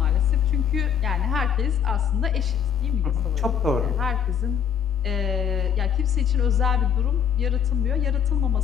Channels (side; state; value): right; quieter; 8.1 dB